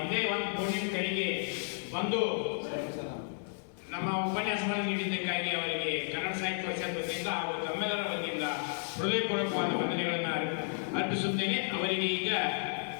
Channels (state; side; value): silent; right; digital silence